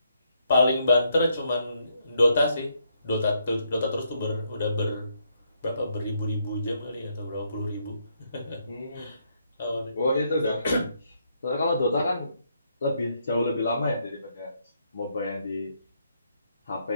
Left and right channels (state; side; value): inverted; both; correlation -0.75